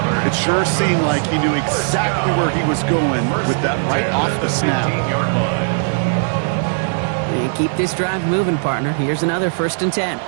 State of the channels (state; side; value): silent; left; 67 dB below the other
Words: It sure seemed like he knew exactly where he was going with that right off the snap. And keep this drive moving, partner. Here's another 1st and 10.